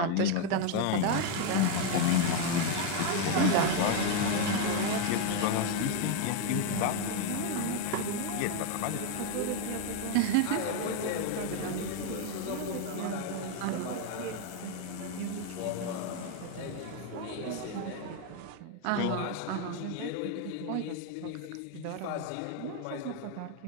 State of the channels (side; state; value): both; different; correlation 0.01